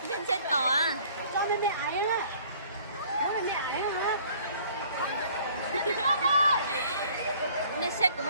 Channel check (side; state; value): both; inverted; correlation -0.55